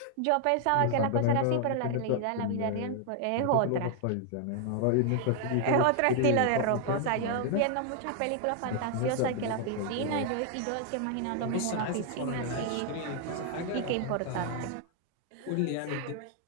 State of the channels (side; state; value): both; different; correlation 0.00